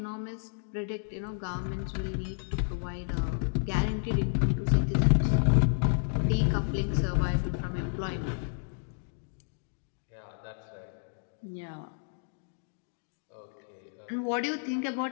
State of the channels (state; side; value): silent; right; digital silence